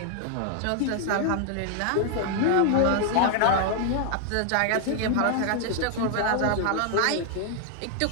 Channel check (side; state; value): both; different; correlation 0.00